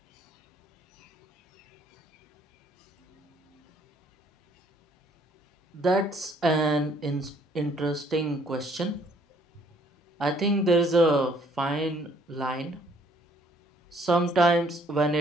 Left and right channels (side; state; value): both; normal; correlation 0.63